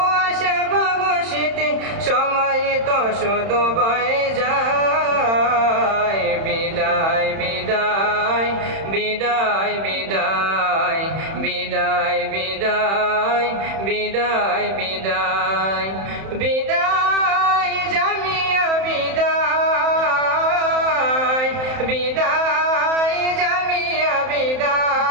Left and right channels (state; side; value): late; left; 31 ms